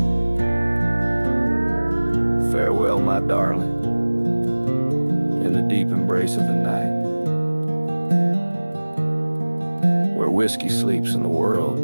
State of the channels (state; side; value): inverted; both; correlation -1.00